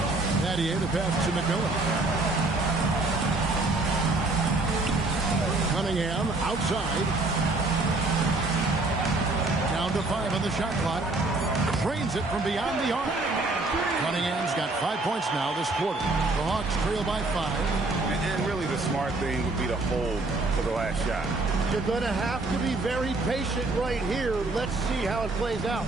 Battier the pass to McMillan. Cunningham outside. Down to 5 on the shot clock. Drains it from beyond the arc. Cunningham's got 5 points now this quarter. The Hawks trail by 5. And really the smart thing would be to hold for the last shot. You're going to have to be very patient right here. Let's see how it plays out.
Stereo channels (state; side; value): quieter; left; 3.1 dB